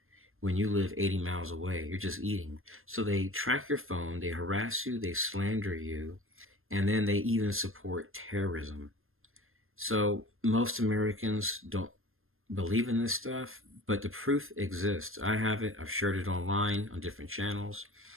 when you live 80 miles away. You're just eating. So they track your phone, they harass you, they slander you, and then they even support terrorism. So most Americans don't believe in this stuff, but the proof exists. I have it. I've shared it online on different channels.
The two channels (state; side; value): late; left; 0.60 ms